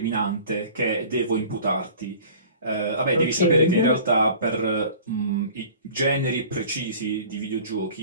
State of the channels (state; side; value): inverted; both; correlation -0.45